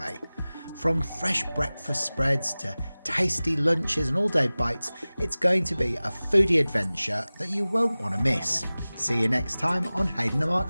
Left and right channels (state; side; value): inverted; both; correlation -0.98